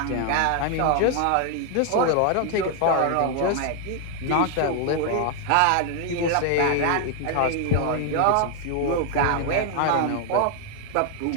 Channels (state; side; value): different; both; correlation 0.00